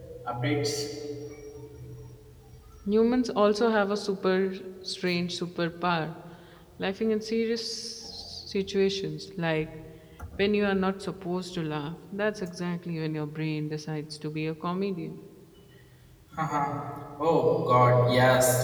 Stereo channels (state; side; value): identical; both; correlation 1.00